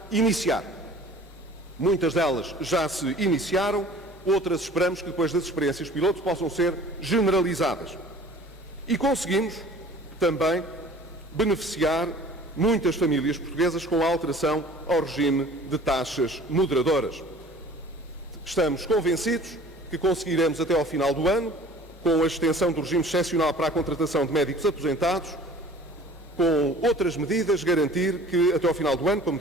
iniciar. Muitas delas já se iniciaram, outras esperamos que depois das experiências piloto possam ser generalizadas. E conseguimos também beneficiar muitas famílias portuguesas com a alteração ao regime de taxas moderadoras. Estamos convencidos que conseguiremos até ao final do ano, com a extensão do regime excepcional para a contratação de médicos aposentados, com outras medidas, garantir que até ao final do ano, como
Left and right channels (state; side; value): normal; both; correlation 0.47